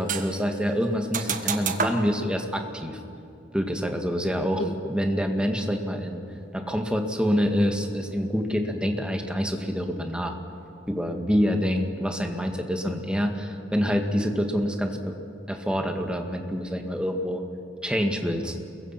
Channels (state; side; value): normal; both; correlation 0.80